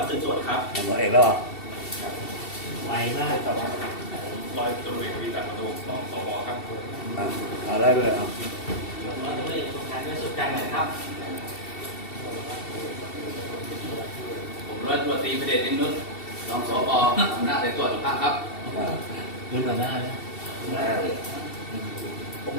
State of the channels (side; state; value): right; late; 2.7 ms